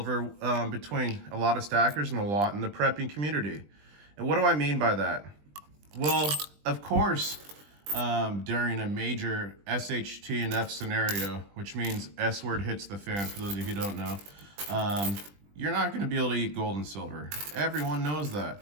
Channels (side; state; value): left; late; 20 ms